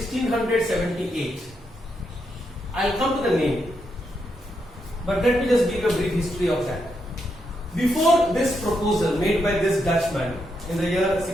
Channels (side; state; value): both; normal; correlation 0.81